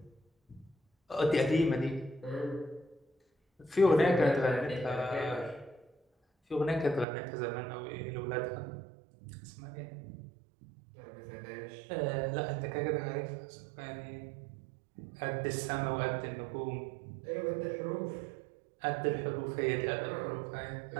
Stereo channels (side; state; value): left; drops out; at 7.1 s